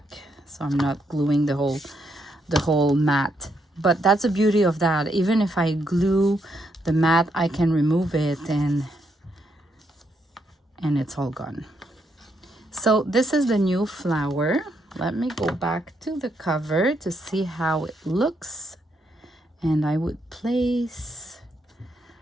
so I'm not gluing the whole mat. But that's the beauty of that. Even if I glue the mat, I can remove it and it's all gone. So this is the new flower. Let me go back to the cover to see how it looks. And I would place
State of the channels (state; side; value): normal; both; correlation 0.78